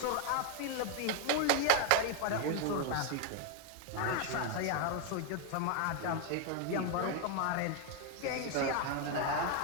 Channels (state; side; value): different; both; correlation 0.00